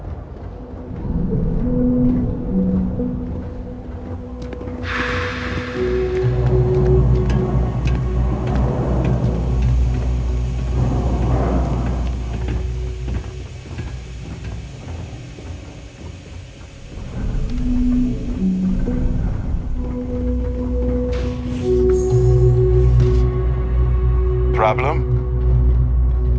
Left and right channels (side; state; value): both; identical; correlation 1.00